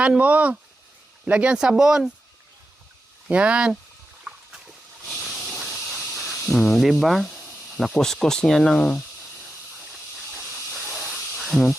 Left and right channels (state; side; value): normal; both; correlation 0.90